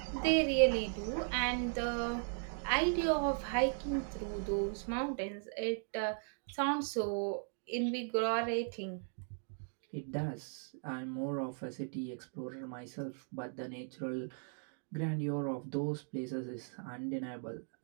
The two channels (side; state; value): left; silent; 53 dB below the other